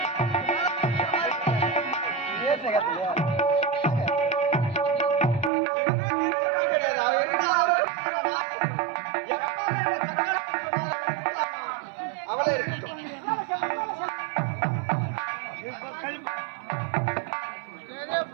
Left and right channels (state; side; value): drops out; left; at 5.5 s